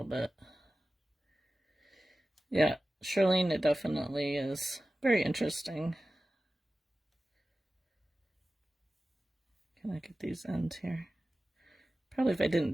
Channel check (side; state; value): both; normal; correlation 0.95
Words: bit. Yeah, Charlene, it definitely is very interesting. Can I get these ends here? Probably if I didn't